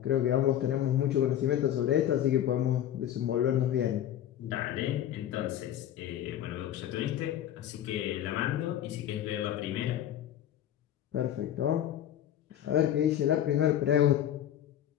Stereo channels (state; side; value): quieter; right; 11.1 dB